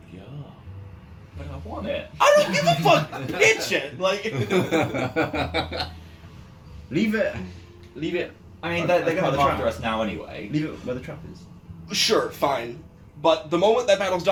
But I want it. I don't give a fuck! Pitch it! Like, Leave it. Leave it. I mean, they're going to By the come after trap. us now anyway. Leave it where the trap is. sure, fine. But the moment that battle's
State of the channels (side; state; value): both; identical; correlation 1.00